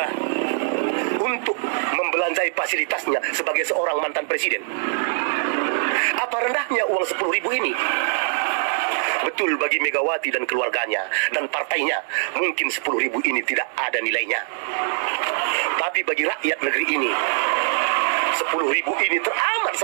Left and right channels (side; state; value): left; silent; digital silence